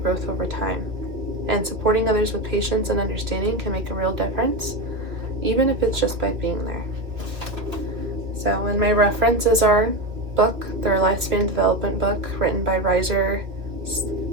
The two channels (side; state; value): left; late; 2.5 ms